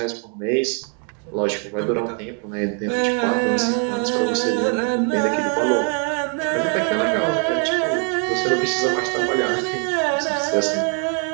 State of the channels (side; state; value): left; quieter; 39.0 dB